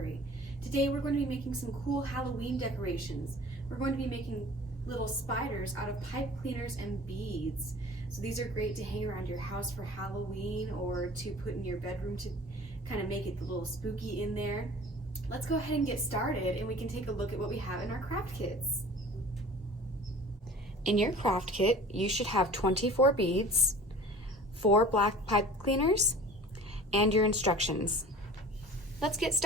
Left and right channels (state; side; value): normal; both; correlation 0.43